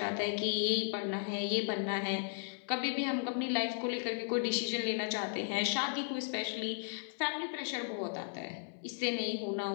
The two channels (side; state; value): right; silent; 54 dB below the other